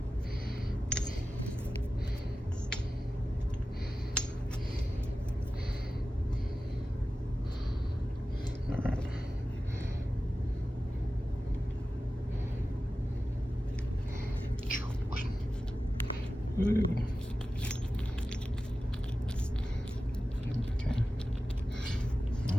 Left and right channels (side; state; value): both; normal; correlation 0.94